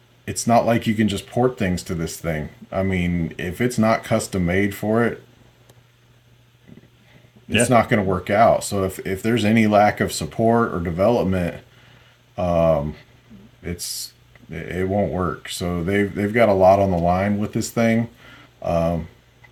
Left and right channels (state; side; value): identical; both; correlation 1.00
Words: it's not like you can just port things to this thing. I mean, if it's not custom made for it, it's Yeah. not going to work out. So if there's any lack of support or development, it's it won't work. So they've got a lot on the line with this thing.